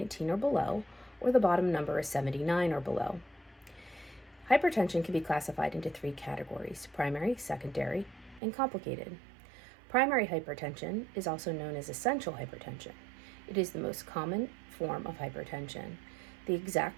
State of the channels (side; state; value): left; drops out; at 8.4 s